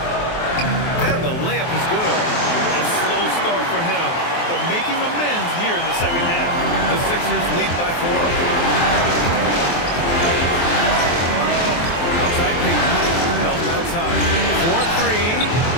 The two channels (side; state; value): right; late; 23 ms